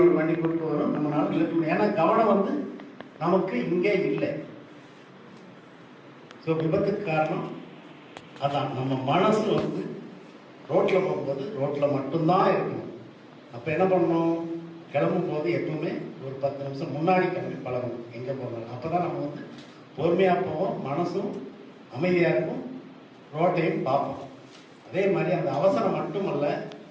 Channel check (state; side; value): identical; both; correlation 1.00